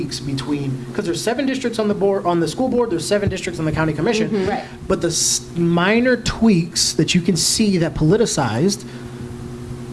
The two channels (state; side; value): identical; both; correlation 1.00